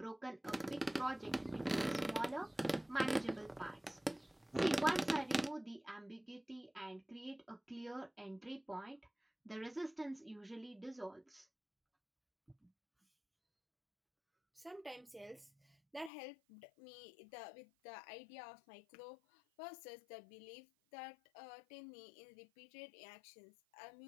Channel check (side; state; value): right; drops out; at 16.1 s